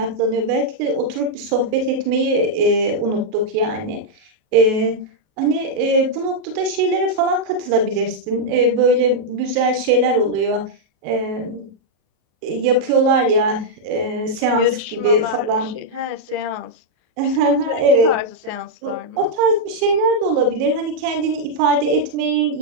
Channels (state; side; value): late; left; 37 ms